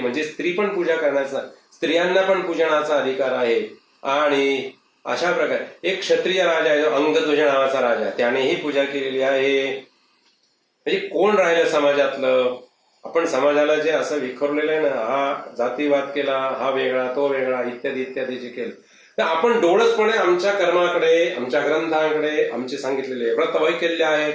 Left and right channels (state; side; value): identical; both; correlation 1.00